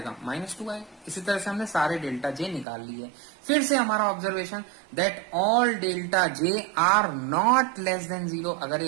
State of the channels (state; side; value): drops out; left; at 2.7 s